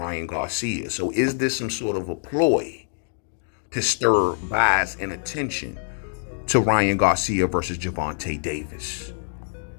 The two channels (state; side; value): silent; right; digital silence